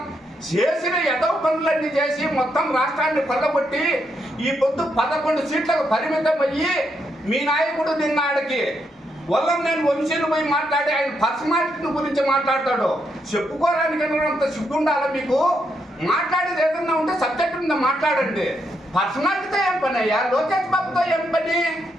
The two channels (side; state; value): both; normal; correlation 0.79